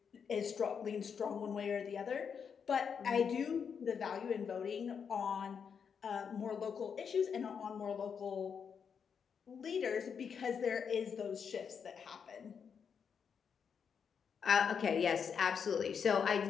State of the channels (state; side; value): quieter; right; 6.8 dB